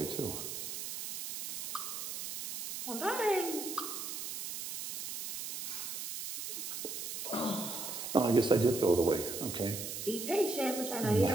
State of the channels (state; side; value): noise; right; hiss, 6 dB below the sound